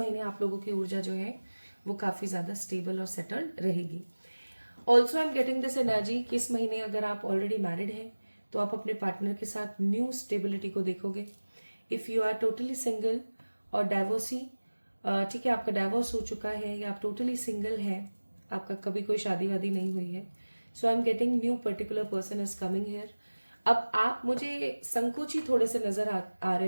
आप लोगों की ऊर्जा जो है वो काफी ज्यादा स्टेबल और सेटल्ड रहेगी। Also I am getting this energy कि इस महीने अगर आप ऑलरेडी मैरिड हैं तो आप अपने पार्टनर के साथ न्यू स्टेबिलिटी को देखोगे। If you are totally single और डाइवोर्सी, ठीक है, आपका डाइवोर्स हो चुका है या आप टोटली सिंगल है, आपका कभी कोई शादी वादी नहीं हुई है, so I am getting new particular person is coming here. अब आप मुझे संकोची थोड़े से नजर आ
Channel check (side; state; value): both; inverted; correlation -1.00